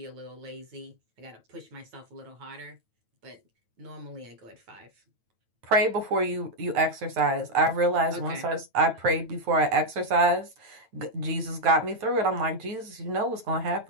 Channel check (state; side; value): late; left; 9.1 ms